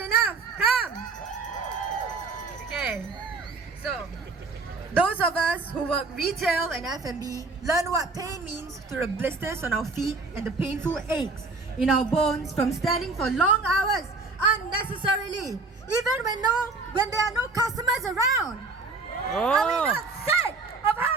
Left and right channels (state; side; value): quieter; left; 3.8 dB